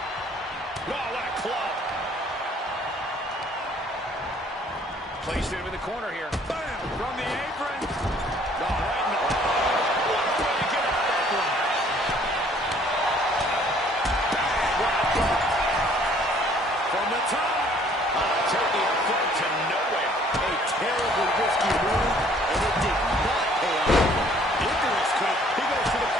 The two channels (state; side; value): normal; both; correlation 0.58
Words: Oh, what a club. Placed him in the corner here. Bam! From the apron. Oh, right in the... What a way to get out of that one. From the top. Taking a flight to nowhere. A terribly risky move, and it did not pay off. Ignorance could. He goes for the